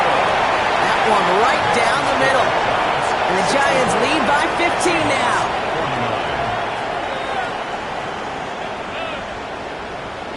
one right down the middle. And the Giants lead by 15 now.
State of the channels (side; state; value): both; identical; correlation 1.00